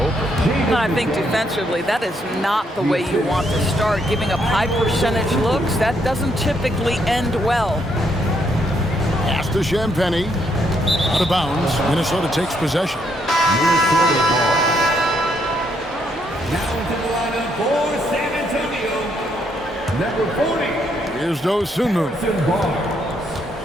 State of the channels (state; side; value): normal; both; correlation 0.74